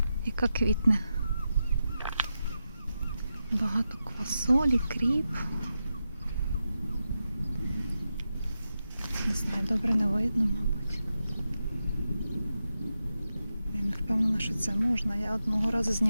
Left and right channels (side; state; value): both; inverted; correlation -0.89